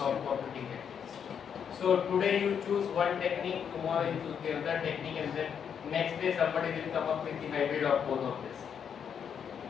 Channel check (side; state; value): right; quieter; 7.7 dB